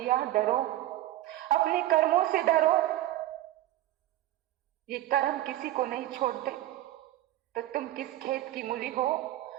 डरो, अपने कर्मों से डरो। ये कर्म किसी को नहीं छोड़ते। तो तुम किस खेत की मूली हो?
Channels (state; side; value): quieter; left; 14.7 dB